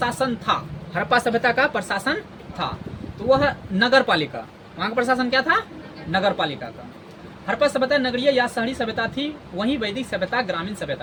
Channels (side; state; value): both; identical; correlation 1.00